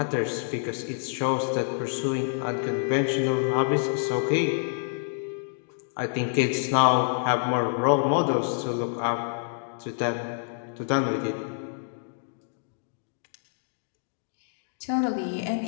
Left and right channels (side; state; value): right; silent; digital silence